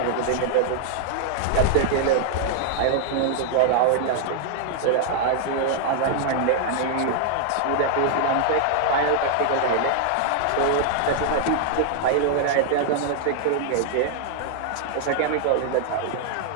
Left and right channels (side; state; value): both; different; correlation 0.00